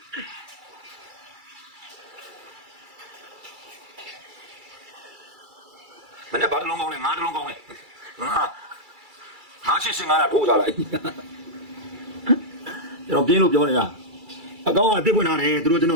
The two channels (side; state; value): left; late; 2.3 ms